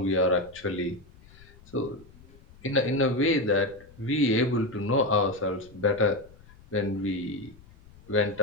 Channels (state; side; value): noise; left; rumble, 24 dB below the sound